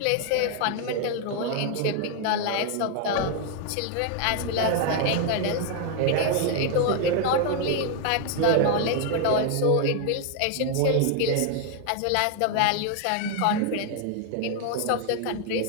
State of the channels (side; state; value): both; different; correlation 0.01